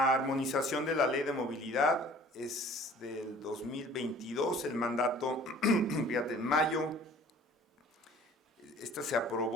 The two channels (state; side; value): normal; both; correlation 0.50